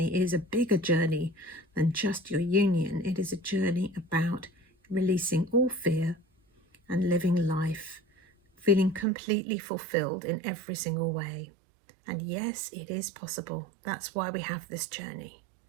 is a bigger journey than just your union. It is a journey about releasing all fear and living life, feeling completely fulfilled in every single way. And yes, it is possible. That's why we have this journey.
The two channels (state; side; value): drops out; left; at 9.1 s